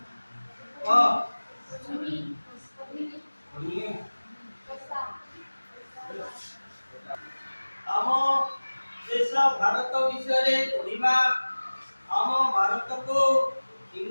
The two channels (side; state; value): both; inverted; correlation -1.00